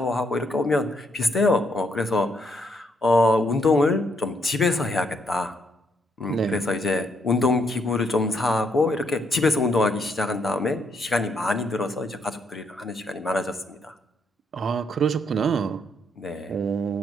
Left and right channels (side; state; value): both; normal; correlation 0.74